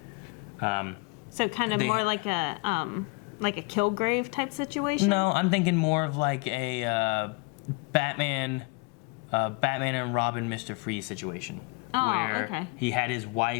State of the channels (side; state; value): right; quieter; 28.9 dB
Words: So kind of more like a Kilgrave type situation? No, I'm thinking more of like a Batman and Robin, Mr. Freeze situation. Oh, where okay. he had his